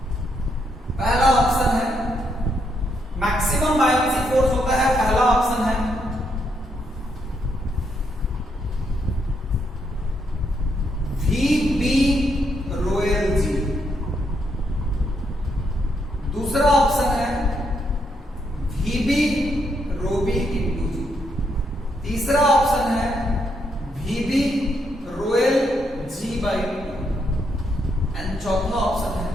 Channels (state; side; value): normal; both; correlation 0.77